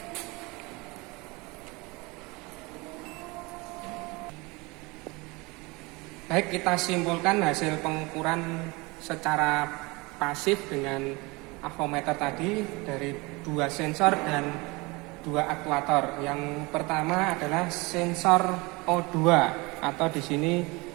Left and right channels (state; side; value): quieter; left; 25.2 dB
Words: Baik, kita simpulkan hasil pengukuran secara pasif dengan avometer tadi dari 2 sensor dan 2 aktuator. Yang pertama adalah sensor O2 atau di sini